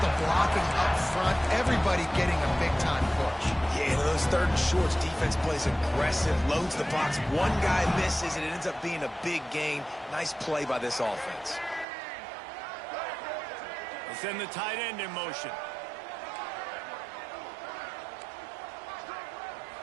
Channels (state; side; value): drops out; left; at 11.9 s